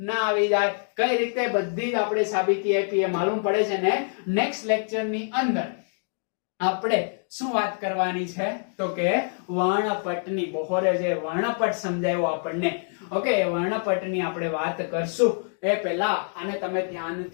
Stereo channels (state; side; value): silent; right; 61 dB below the other